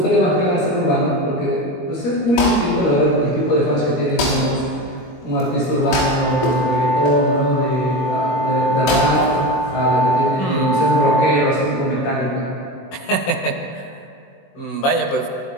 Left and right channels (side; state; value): right; late; 21 ms